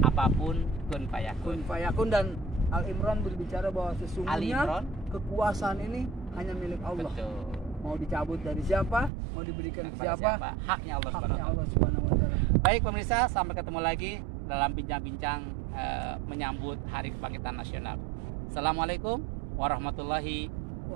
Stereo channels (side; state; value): left; drops out; at 9.1 s